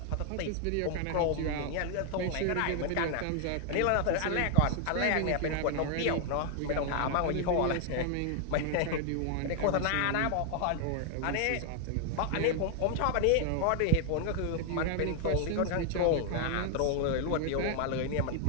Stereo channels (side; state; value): both; different; correlation 0.00